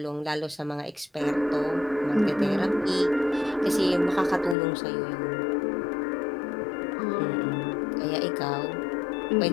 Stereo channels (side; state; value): right; drops out; at 4.5 s